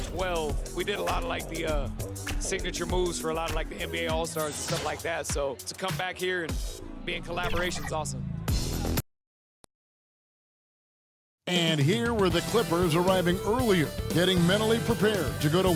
we did a lot of like the signature moves for a lot of like the NBA All-Stars and stuff like that. So to come back here and be in collaboration is awesome. And here were the Clippers arriving earlier, getting mentally prepared to go to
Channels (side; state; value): both; identical; correlation 1.00